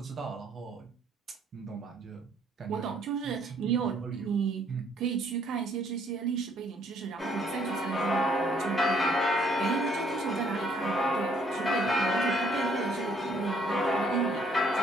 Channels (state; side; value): normal; both; correlation 0.65